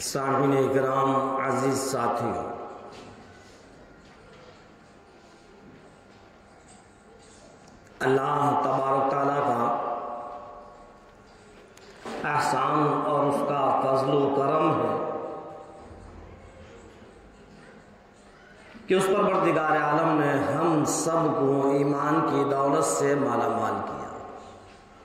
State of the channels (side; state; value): both; identical; correlation 1.00